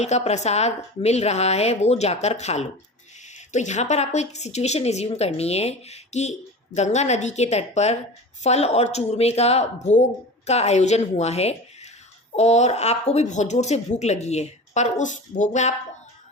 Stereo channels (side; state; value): both; normal; correlation 0.33